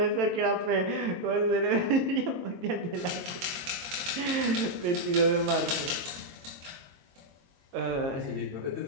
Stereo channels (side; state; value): left; late; 22 ms